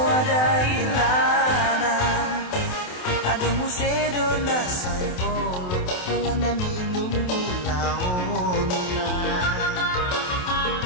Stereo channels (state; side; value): late; right; 28 ms